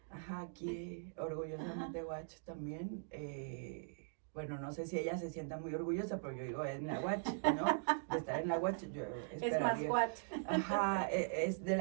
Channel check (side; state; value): left; silent; digital silence